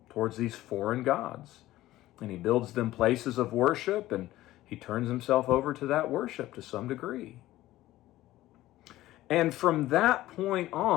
towards these foreign gods. And he builds them places of worship, and he turns himself over to that worship to some degree. And from that point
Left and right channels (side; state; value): right; quieter; 15.8 dB